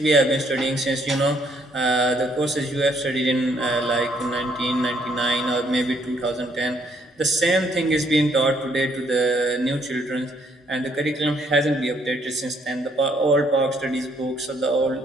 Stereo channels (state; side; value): normal; both; correlation 0.68